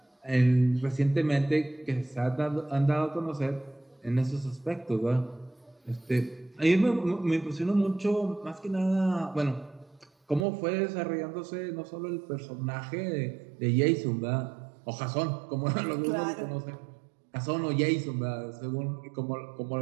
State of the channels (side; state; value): left; drops out; at 10.5 s